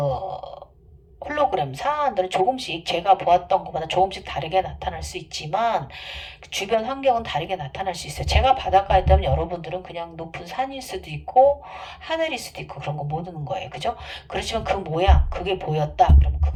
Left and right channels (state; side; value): identical; both; correlation 1.00